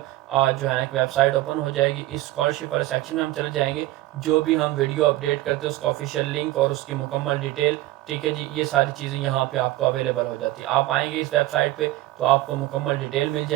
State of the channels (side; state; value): left; quieter; 16.7 dB